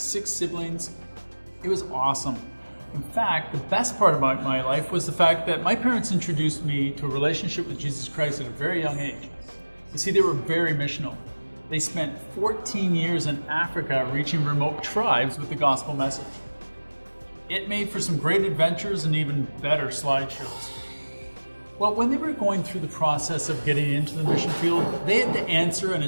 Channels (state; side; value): inverted; both; correlation -1.00